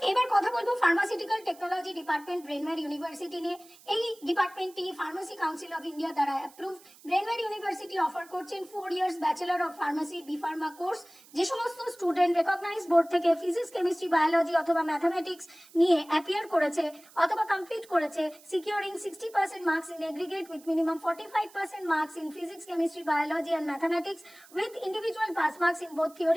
এবার কথা বলবো pharmaceutical technology department Brainware university নিয়ে। এই ডিপার্টমেন্টটি ফার্মাসি কাউন্সিল অফ ইন্ডিয়া দ্বারা অ্যাপ্রুভড। ব্রেনওয়্যার ইউনিভার্সিটি অফার করছেন 4 years bachelor of pharmacy B pharma course. যে সমস্ত স্টুডেন্ট রেকগনাইজ বোর্ড থেকে ফিজিক্স, কেমিস্ট্রি, বায়োলজি অথবা ম্যাথামেটিক্স নিয়ে অ্যাপিয়ার করেছে অথবা কমপ্লিট করেছে securing 60% marks in aggregate with minimum 45% marks in physics, chemistry, biology and mathematics with individual pass marks in both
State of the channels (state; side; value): noise; right; hiss, 24 dB below the sound